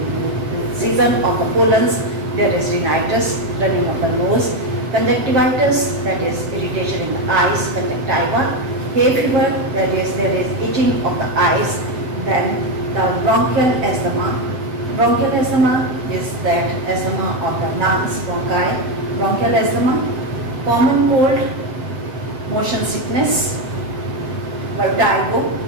season of the pollens, there is rhinitis, running of the nose. Conjunctivitis, that is irritation in the eyes, conjunctiva. Hay fever, that is there is itching of the eyes. Then the bronchial asthma. Bronchial asthma is that asthma of the lungs, bronchi. Bronchial asthma. Common cold, motion sickness, vertigo.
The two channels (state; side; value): late; left; 7.8 ms